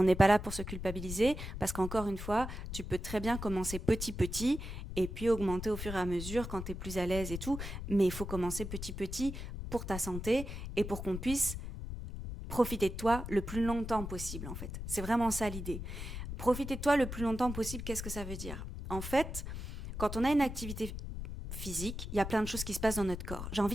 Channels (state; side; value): noise; left; rumble, 7 dB below the sound